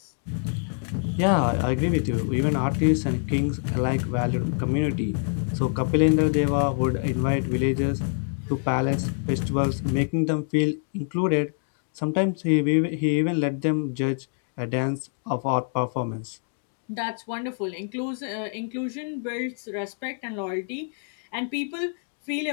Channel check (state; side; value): silent; right; 61 dB below the other